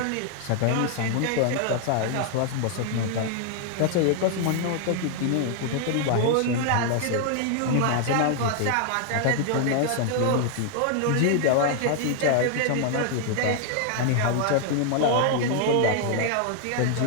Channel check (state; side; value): different; both; correlation 0.00